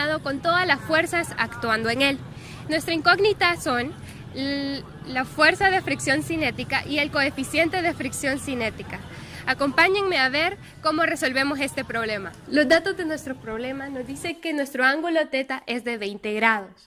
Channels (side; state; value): both; identical; correlation 1.00